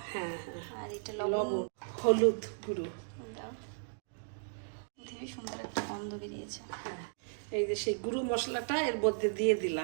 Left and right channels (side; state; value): left; silent; digital silence